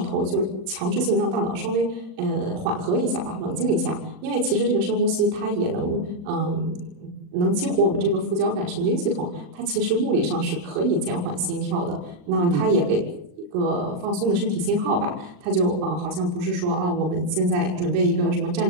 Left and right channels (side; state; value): left; late; 39 ms